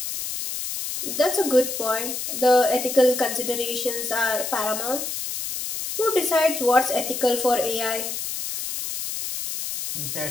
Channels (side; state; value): left; noise; hiss, 5 dB below the sound